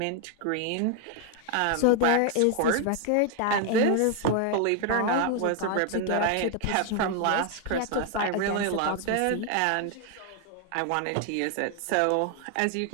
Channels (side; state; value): both; different; correlation 0.00